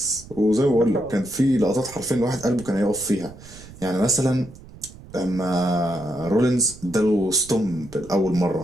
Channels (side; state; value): right; noise; rumble, 19 dB below the sound